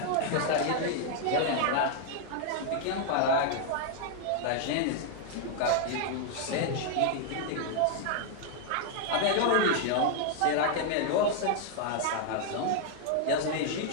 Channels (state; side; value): different; both; correlation 0.00